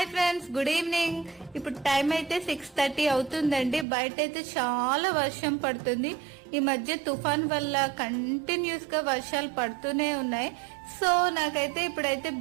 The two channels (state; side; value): drops out; left; at 3.9 s